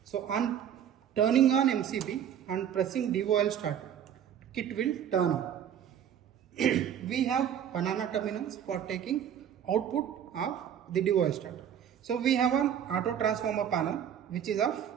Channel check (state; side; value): quieter; left; 9.3 dB